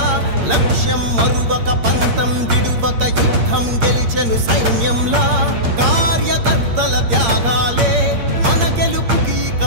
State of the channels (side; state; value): left; late; 8.6 ms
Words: లక్ష్యం మరువక పంతం విడువక యుద్ధం గెలిచెను సైన్యంలా. కార్యకర్తల త్యాగాలే మన గెలుపుకి